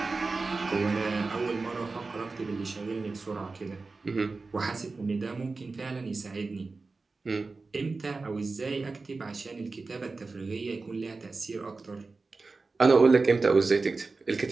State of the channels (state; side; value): quieter; left; 3.9 dB